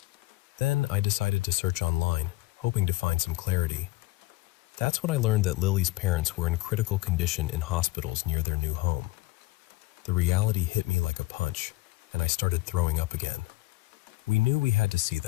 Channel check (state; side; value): quieter; right; 19.5 dB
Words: Then I decided to search online, hoping to find some clarity. That's when I learned that Lily's parents were in critical condition in hospitals near their new home. The reality hit me like a punch, and I started throwing up again. We knew we had to see